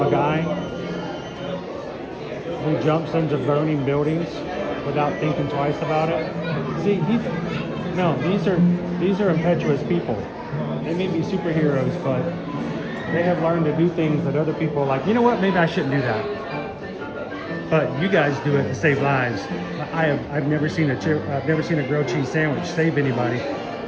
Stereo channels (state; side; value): identical; both; correlation 1.00